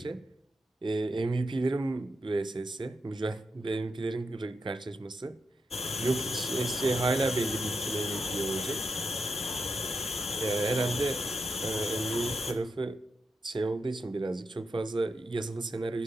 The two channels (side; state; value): both; normal; correlation 0.85